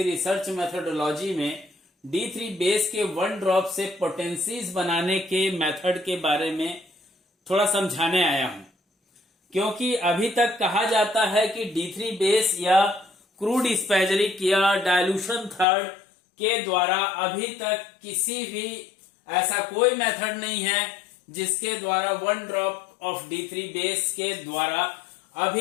research methodology में D3 बेस के 1 ड्रॉप से पोटेंसीज बनाने के मेथड के बारे में थोड़ा समझाने आया हूं, क्योंकि अभी तक कहा जाता है कि D3 बेस या क्रूड स्पैजरिक या डायल्यूशन थर्ड के द्वारा अभी तक किसी भी ऐसा कोई मेथड नहीं है जिसके द्वारा 1 ड्रॉप ऑफ D3 बेस के द्वारा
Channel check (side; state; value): right; drops out; at 15.7 s